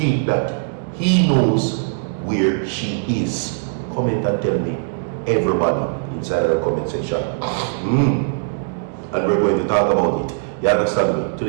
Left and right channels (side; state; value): left; silent; digital silence